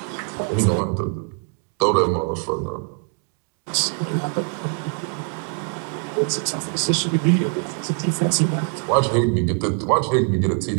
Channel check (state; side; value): quieter; left; 38.5 dB